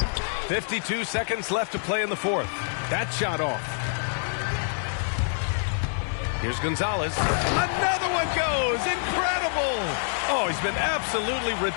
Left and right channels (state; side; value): silent; right; digital silence